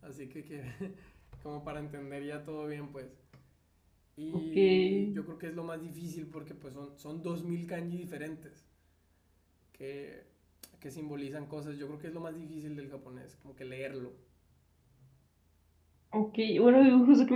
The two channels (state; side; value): identical; both; correlation 1.00